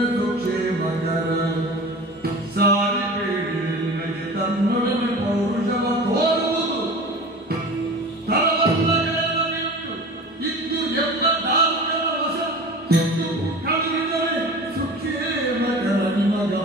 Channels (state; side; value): normal; both; correlation 0.37